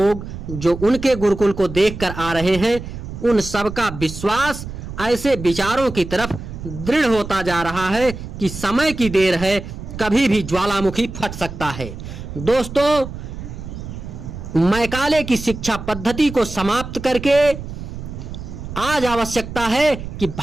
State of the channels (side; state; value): right; noise; rumble, 10 dB below the sound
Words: जो उनके गुरुकुल को देखकर आ रहे हैं, उन सबका विश्वास ऐसे विचारों की तरफ दृढ़ होता जा रहा है कि समय की देर है, कभी भी ज्वालामुखी फट सकता है। दोस्तों, मैकाले की शिक्षा पद्धति को समाप्त करके आज आवश्यकता है कि